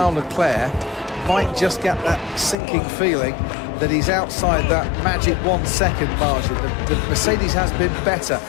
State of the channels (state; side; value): drops out; right; at 2.6 s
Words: Leclerc might just get that sinking feeling that he's outside that magic 1 second margin. The Mercedes has been better